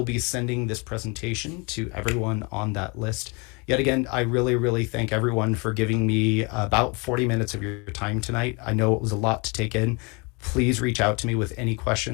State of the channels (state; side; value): quieter; right; 30.4 dB